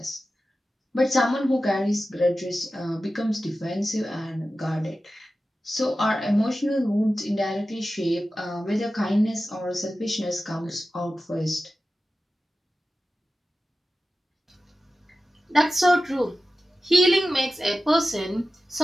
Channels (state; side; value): normal; both; correlation 0.94